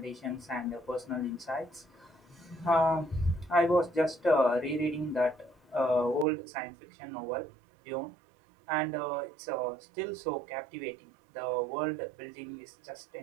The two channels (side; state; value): left; drops out; at 6.2 s